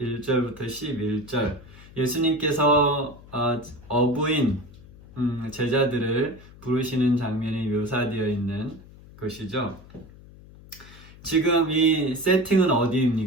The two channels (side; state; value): left; noise; hum, 20 dB below the sound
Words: 1절부터 11절 예수님께서 어부인 제자들을 부르시는 장면이 묘사되어 있는 것이죠. 지금 이 세팅은